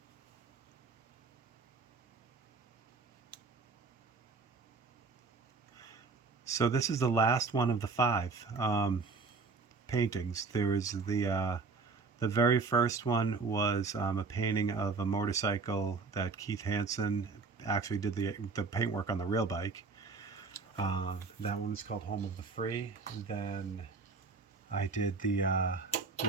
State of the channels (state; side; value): quieter; left; 4.5 dB